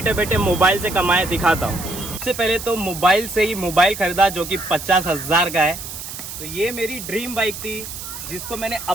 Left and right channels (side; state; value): right; noise; hiss, 10 dB below the sound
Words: बैठे मोबाइल से कमाए दिखाता हूँ। सबसे पहले तो मोबाइल से ही मोबाइल खरीदा जो कि 50,000 का है। तो ये मेरी ड्रीम बाइक थी जिसको मैंने